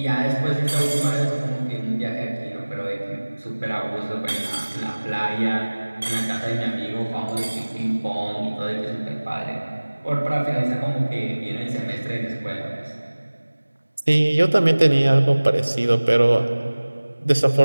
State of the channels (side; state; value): both; inverted; correlation -1.00